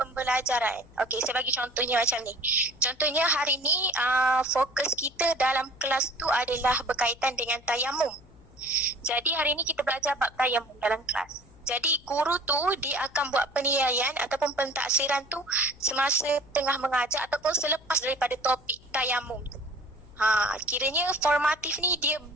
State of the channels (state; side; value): noise; left; hum, 25 dB below the sound